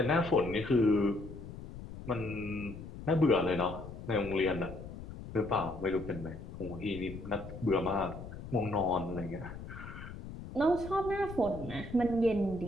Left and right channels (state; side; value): noise; left; rumble, 11 dB below the sound